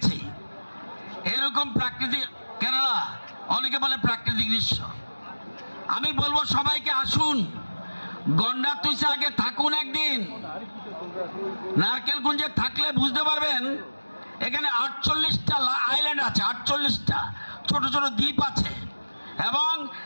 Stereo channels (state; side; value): inverted; both; correlation -1.00